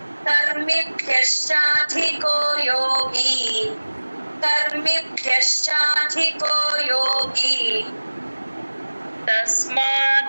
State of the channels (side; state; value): both; inverted; correlation -1.00